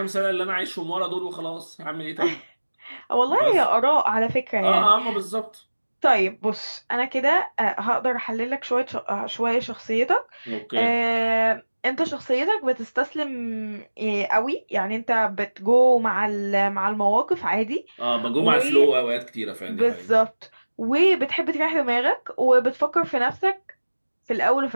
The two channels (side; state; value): both; inverted; correlation -1.00